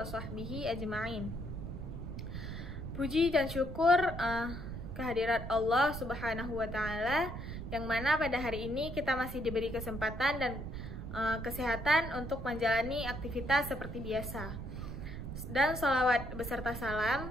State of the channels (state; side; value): noise; right; rumble, 7 dB below the sound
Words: sahbihi ajma'in. Puji dan syukur kehadirat Allah subhanahu wa ta'ala, yang mana pada hari ini kita masih diberi kesempatan dan kesehatan untuk menjalani aktivitas seperti biasa. Dan sholawat beserta salam